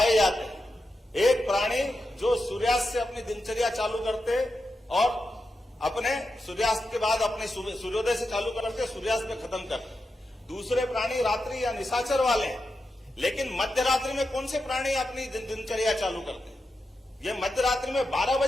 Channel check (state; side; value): normal; both; correlation 0.88